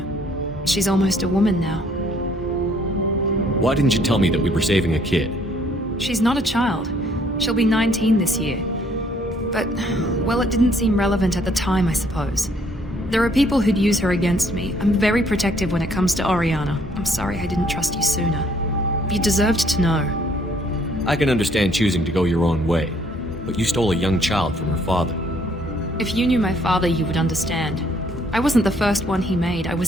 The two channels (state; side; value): normal; both; correlation 0.64